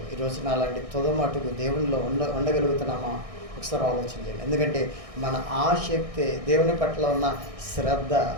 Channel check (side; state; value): left; late; 1.6 ms